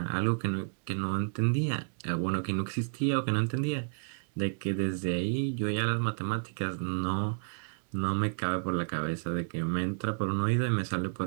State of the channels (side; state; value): left; silent; digital silence